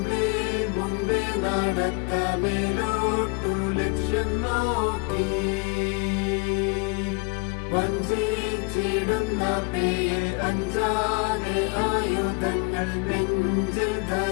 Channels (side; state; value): right; quieter; 32.7 dB